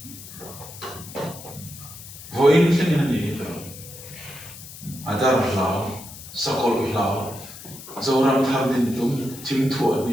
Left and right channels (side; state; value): left; noise; hiss, 15 dB below the sound